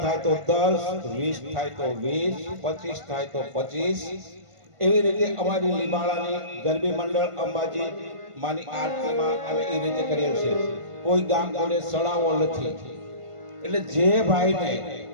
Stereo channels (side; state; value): left; late; 1.5 ms